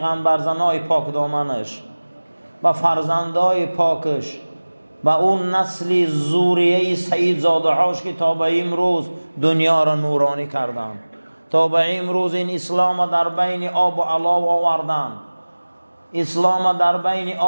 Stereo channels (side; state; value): both; inverted; correlation -1.00